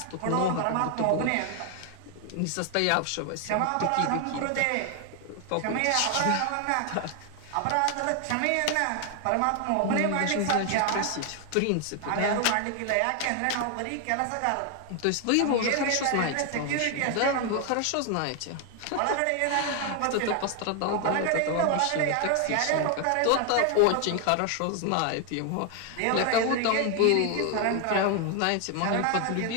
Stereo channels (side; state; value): both; different; correlation 0.00